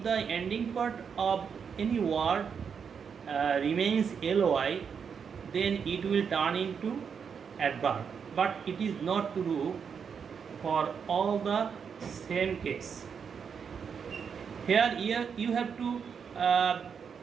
the ending part of any word remains ly, then it will turn into adverb. But it is not true for all the same case. Here you have to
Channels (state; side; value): quieter; left; 6.6 dB